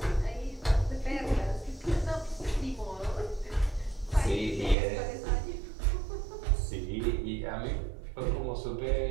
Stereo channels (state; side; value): drops out; left; at 4.8 s